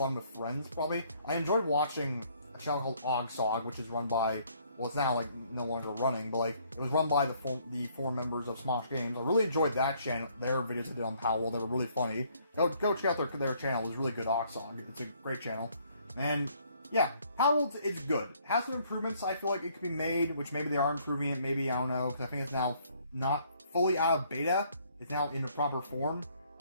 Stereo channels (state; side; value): inverted; both; correlation -0.65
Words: with friends, probably. I enjoyed watching a channel called Ogsog, which is run by, well, it's now, like, no longer running, but, like, it was run by the four members of Smosh Games. I really enjoyed that channel, their videos they did on Palworld. They were really funny. Go check out their channel. It was really good, Ogsog. It's a great channel. And, yeah, Palworld is good. It has some improvements I feel like it could be made, which maybe they are improving it, maybe, I don't know, because I think it's now not fully out of beta. It's now in the proper form.